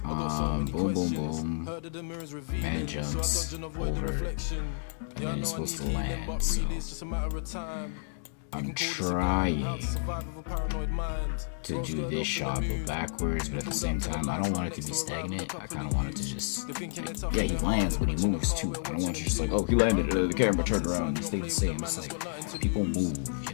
boom, boom, man jumps over, and then he's supposed to land, so I'm trying to do this shot but backwards, but at the same time I don't want it to be stagnant. I kind of want it to just, like, yeah, he lands but he moves too. I don't want you just like, oh, he landed, the camera turned around and stayed the same. It's like, people move, you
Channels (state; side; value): silent; right; digital silence